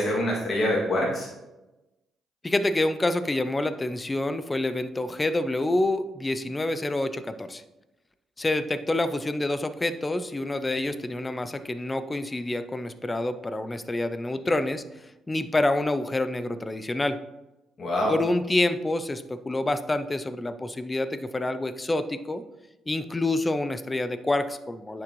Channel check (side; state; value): both; normal; correlation 0.91